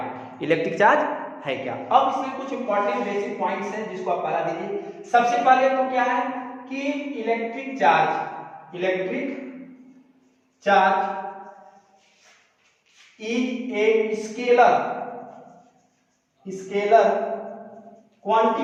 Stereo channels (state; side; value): identical; both; correlation 1.00